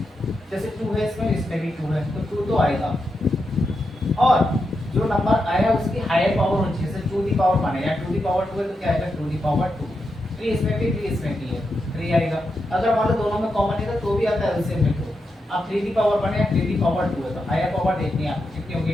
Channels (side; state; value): both; normal; correlation 0.86